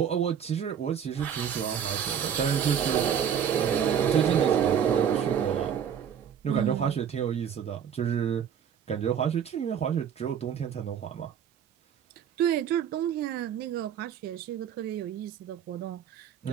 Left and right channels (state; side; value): quieter; left; 8.4 dB